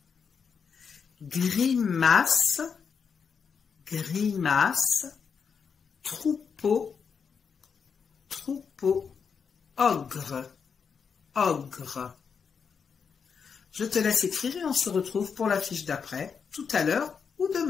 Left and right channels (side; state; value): right; quieter; 6.2 dB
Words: Grimace. Grimace. Troupeau. Troupeau. Ogre. Ogre. Je te laisse écrire et on se retrouve pour la fiche d'après, tout à l'heure ou